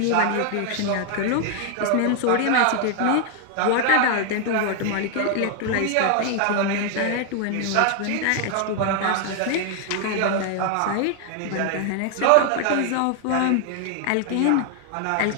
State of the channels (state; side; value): different; both; correlation 0.00